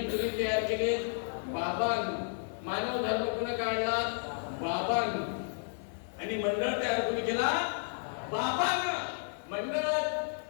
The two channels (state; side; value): silent; right; 56 dB below the other